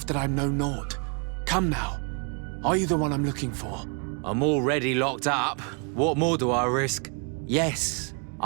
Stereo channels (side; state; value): left; quieter; 37.6 dB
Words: that I'm no Nord. Come now. Are you the one I'm looking for? I'm already locked up. What more do I risk? Yes,